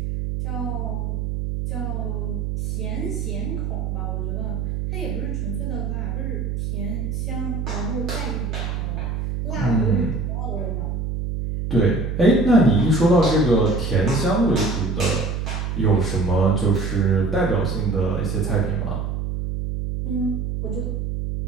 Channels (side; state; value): right; noise; hum, 2 dB below the sound